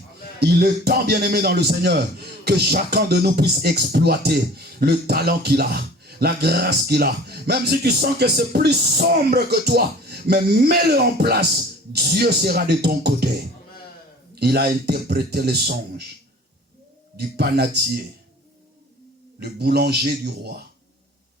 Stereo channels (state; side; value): normal; both; correlation 0.45